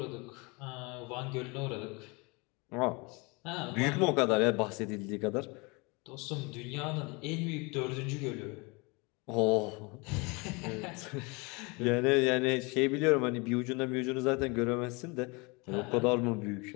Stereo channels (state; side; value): quieter; right; 28.1 dB